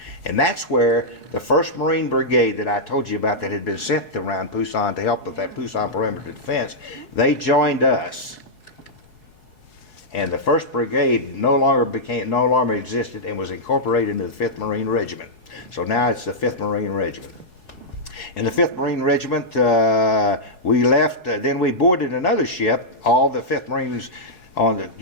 And that's where the 1st Marine Brigade that I told you about that had been sent around Pusan to help with that Pusan perimeter defense, they joined us. And the 1st Brigade no longer existed and was incorporated into the 5th Marine Regiment. So now it's the 5th Marine Regiment. In the 5th Marine Regiment, we left, then we boarded another ship, all the 5th Marines on the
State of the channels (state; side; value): late; right; 4.7 ms